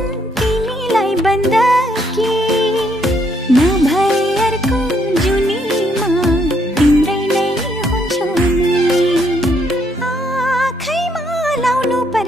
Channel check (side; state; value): both; normal; correlation 0.70